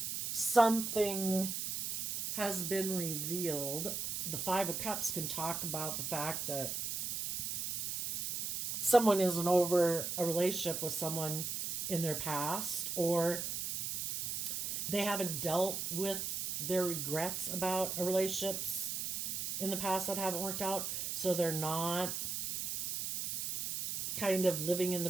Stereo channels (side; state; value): right; noise; hiss, 2 dB below the sound